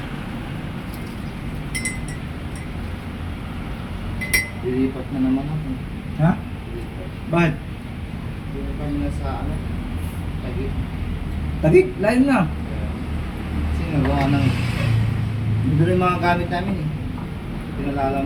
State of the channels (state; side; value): identical; both; correlation 1.00